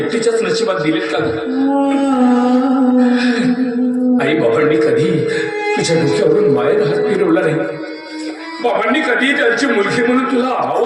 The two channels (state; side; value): identical; both; correlation 1.00